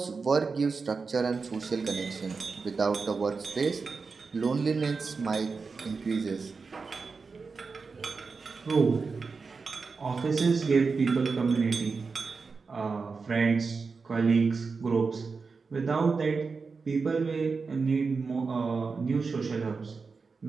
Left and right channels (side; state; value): left; quieter; 4.7 dB